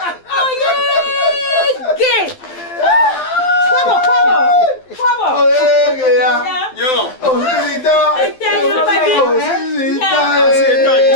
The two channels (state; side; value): late; right; 12 ms